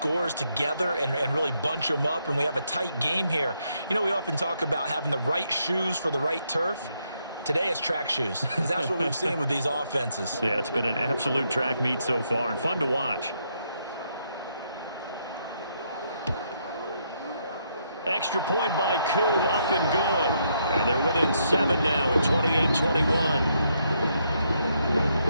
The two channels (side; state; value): both; inverted; correlation -0.76